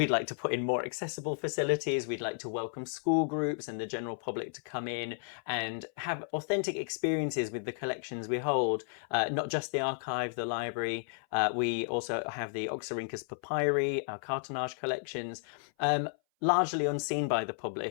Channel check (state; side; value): silent; right; 56 dB below the other